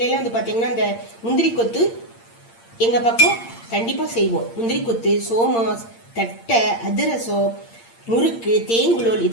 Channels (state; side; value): late; right; 8.7 ms